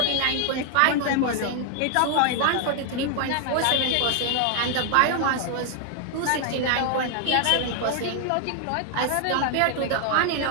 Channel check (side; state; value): both; different; correlation 0.00